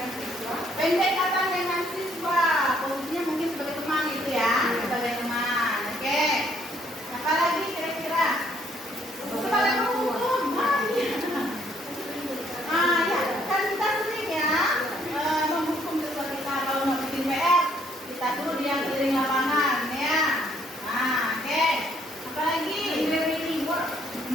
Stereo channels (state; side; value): noise; left; hiss, 24 dB below the sound